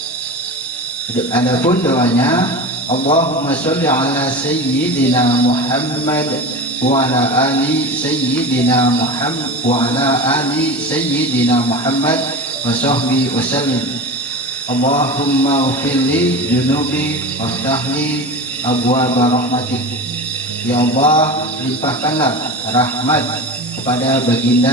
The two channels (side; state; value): both; normal; correlation 0.28